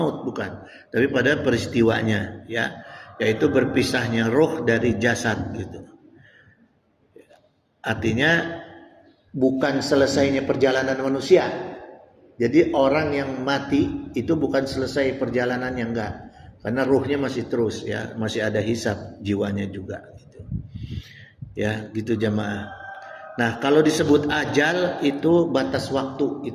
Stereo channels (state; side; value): identical; both; correlation 1.00